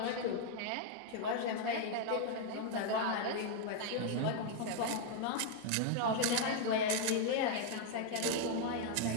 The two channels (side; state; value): both; different; correlation 0.00